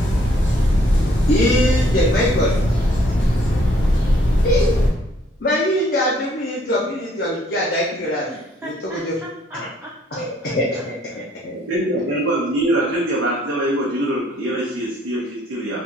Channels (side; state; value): both; normal; correlation 0.64